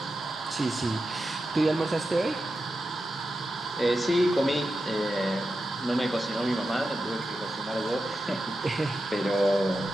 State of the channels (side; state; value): both; normal; correlation 0.90